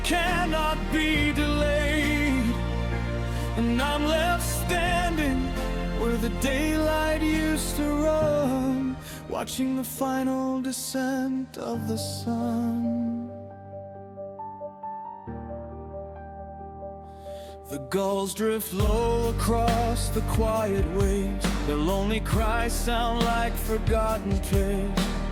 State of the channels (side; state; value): both; identical; correlation 1.00